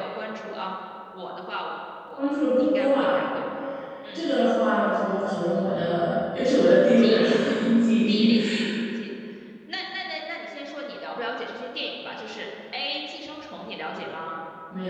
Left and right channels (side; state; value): both; identical; correlation 1.00